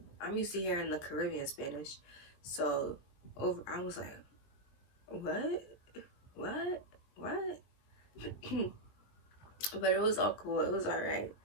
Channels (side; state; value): right; late; 20 ms